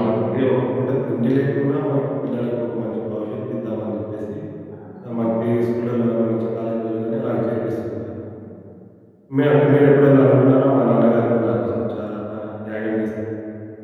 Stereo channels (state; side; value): identical; both; correlation 1.00